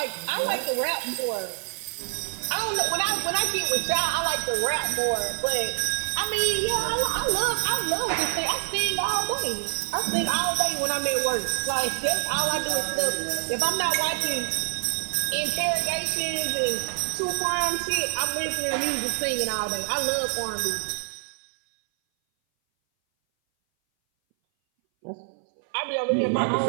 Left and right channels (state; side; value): silent; left; 59 dB below the other